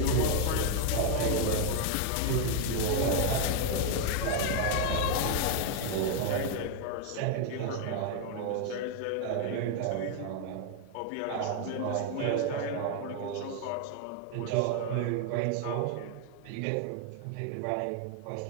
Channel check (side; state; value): both; different; correlation 0.00